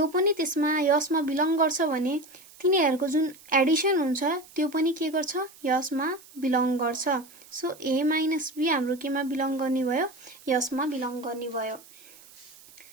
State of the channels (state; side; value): noise; right; hiss, 23 dB below the sound